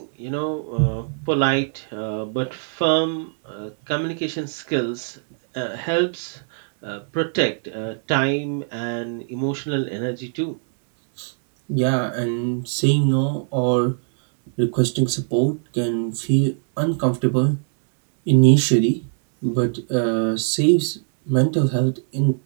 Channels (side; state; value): left; silent; 64 dB below the other